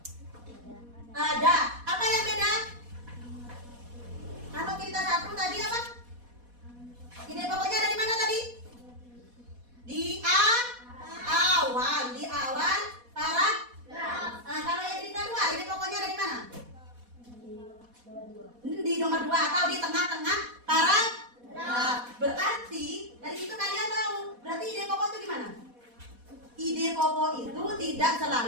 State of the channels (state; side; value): late; left; 4.1 ms